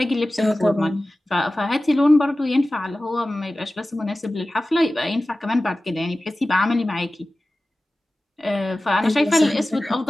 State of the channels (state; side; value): normal; both; correlation 0.96